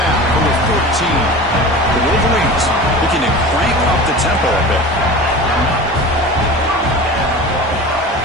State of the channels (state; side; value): normal; both; correlation 0.34